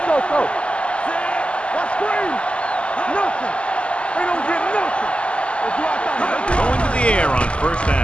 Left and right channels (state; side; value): late; right; 0.055 ms